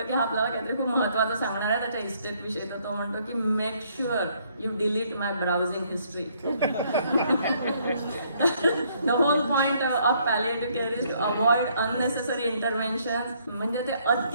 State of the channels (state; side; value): inverted; both; correlation -0.67